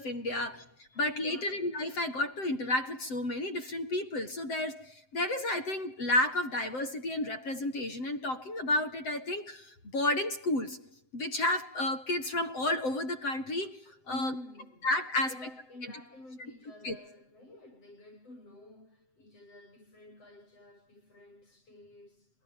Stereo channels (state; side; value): late; right; 7.8 ms